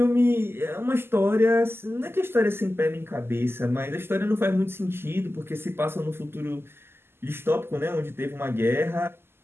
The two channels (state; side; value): late; left; 0.12 ms